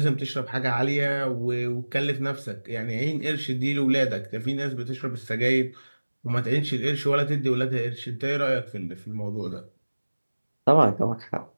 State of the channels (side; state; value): both; inverted; correlation -1.00